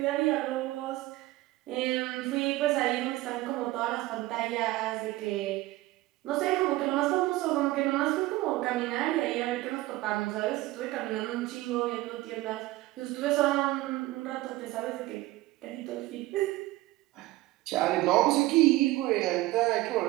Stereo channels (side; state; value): left; quieter; 18.1 dB